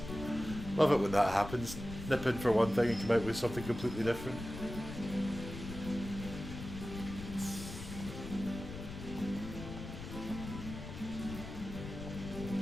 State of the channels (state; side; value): noise; left; rumble, 9 dB below the sound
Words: Love it when that happens. Nip in for one thing and come out with something completely different.